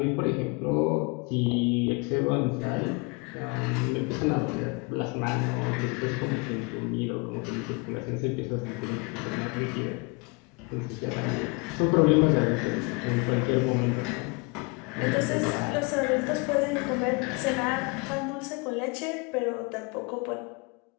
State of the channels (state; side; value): quieter; right; 29.8 dB